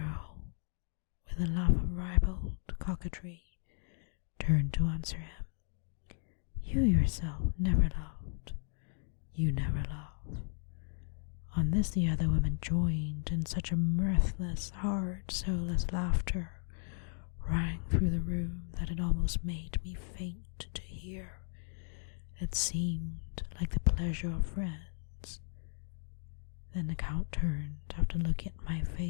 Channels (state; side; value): silent; right; 54 dB below the other